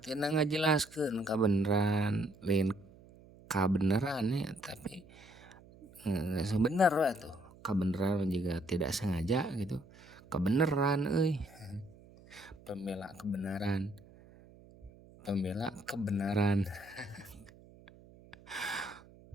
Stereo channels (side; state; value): right; noise; hum, 23 dB below the sound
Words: tina ngajelaskeun kabeneran lain kabeneran ya tapi sebenar lah tuh kebenaran juga tidak sengaja gitu kebenaran pembela kebenaran kebenaran